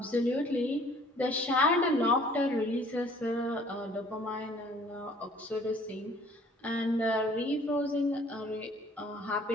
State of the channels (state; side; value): normal; both; correlation 0.55